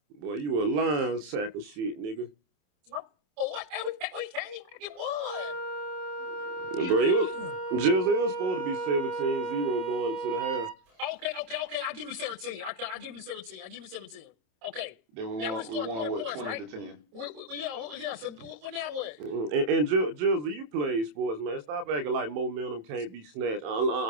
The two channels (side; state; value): left; late; 27 ms